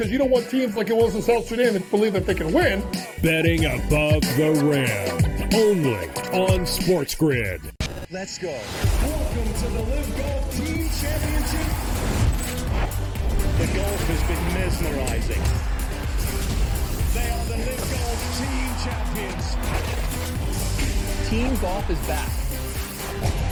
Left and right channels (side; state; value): both; identical; correlation 1.00